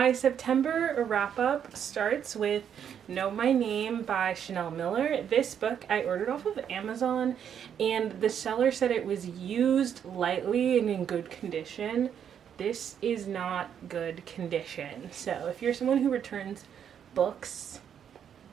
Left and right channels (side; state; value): left; quieter; 8.6 dB